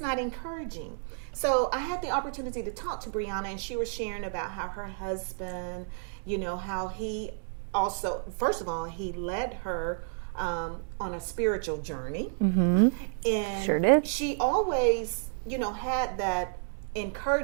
encouraging. So I had the opportunity to talk to Briana, and she was sharing about how her husband, how he also, first of all, he led her on a spiritual journey. And Sure did. she always, had that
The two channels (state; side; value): silent; left; digital silence